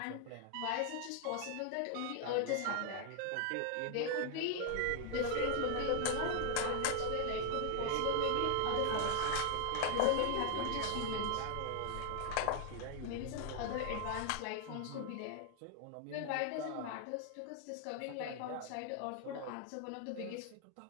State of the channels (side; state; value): both; different; correlation 0.00